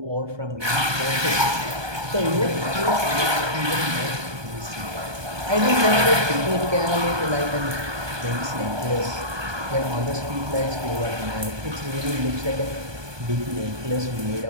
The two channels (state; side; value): late; left; 1.2 ms